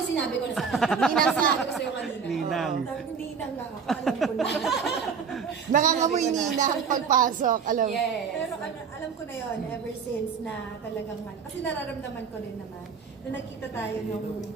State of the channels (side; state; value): left; quieter; 6.2 dB